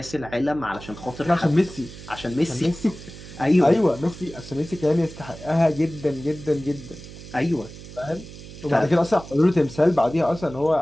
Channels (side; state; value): right; noise; hum, 15 dB below the sound